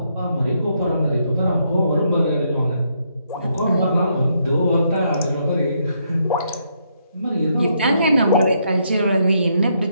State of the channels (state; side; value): inverted; both; correlation -0.75